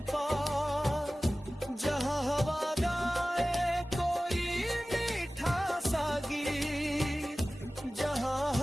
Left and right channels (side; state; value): both; normal; correlation 0.97